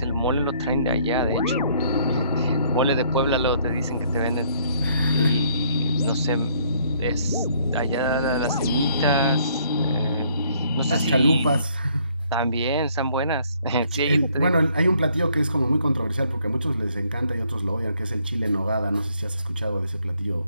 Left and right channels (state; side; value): inverted; both; correlation -0.65